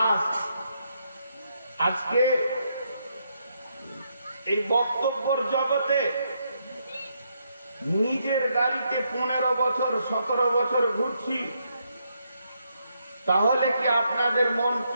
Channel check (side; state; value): both; inverted; correlation -0.77